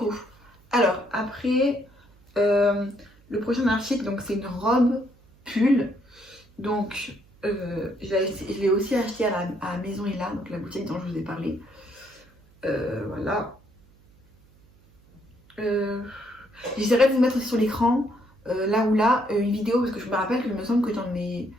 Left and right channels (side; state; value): right; noise; hum, 29 dB below the sound